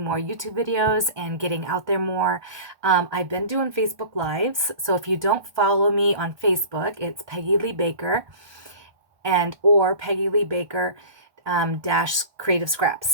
more YouTube videos and getting out there more. I've been doing Facebook Lives, so if you don't follow me on Facebook, it's Peggy Lee Baker or Peggy Lee Baker dash Creative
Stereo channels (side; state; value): left; late; 1.3 ms